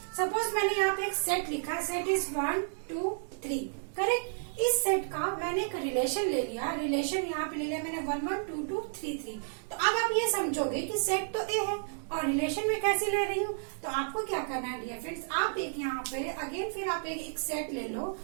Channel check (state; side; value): silent; left; digital silence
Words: सपोज मैंने यहाँ पे एक सेट लिखा, सेट इज 1 2 3, करेक्ट। इस सेट का मैंने एक रिलेशन ले लिया, रिलेशन यहाँ पे ले लिया मैंने 1 1 2 2 3 3। तो अब आप ये समझोगे कि सेट तो ए है और रिलेशन में कैसे ले रही हूँ, तो आपको क्या करना है डियर फ्रेंड्स, आप एक यहाँ पे अगेन फिर आप एक सेट ले लो